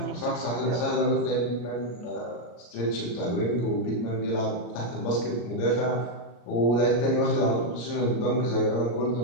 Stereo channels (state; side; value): late; right; 34 ms